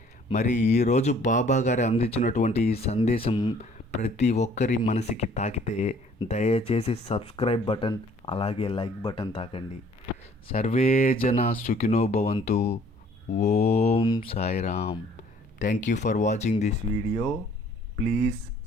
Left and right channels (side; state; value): both; normal; correlation 0.57